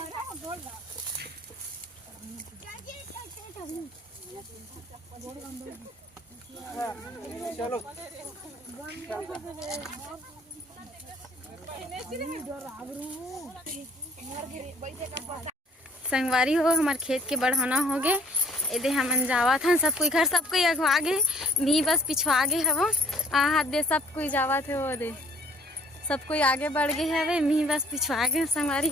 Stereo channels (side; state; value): both; normal; correlation 0.57